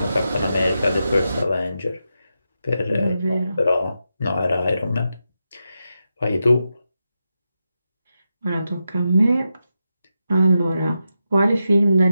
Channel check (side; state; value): both; inverted; correlation -0.88